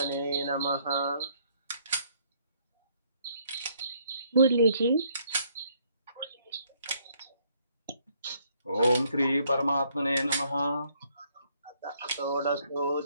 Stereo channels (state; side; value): inverted; both; correlation -0.68